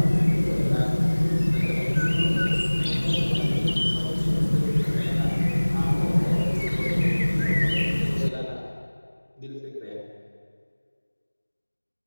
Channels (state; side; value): inverted; both; correlation -1.00